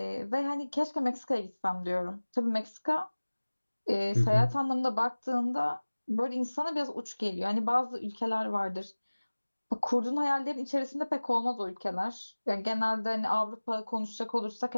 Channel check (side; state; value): both; inverted; correlation -1.00